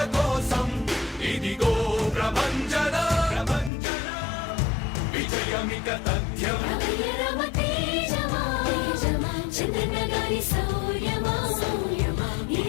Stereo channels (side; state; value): right; drops out; at 3.7 s